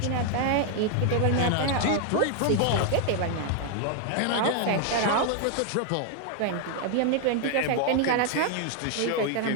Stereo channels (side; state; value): both; different; correlation 0.00